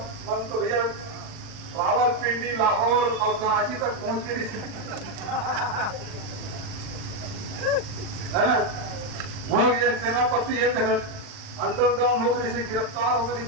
मन तो भैया रावलपिंडी, लाहौर और कराची तक पहुंच के है ना। वहां सेनापति एक अंडरग्राउंड हो गई से गिरफ्तार हो गई,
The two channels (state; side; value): late; left; 39 ms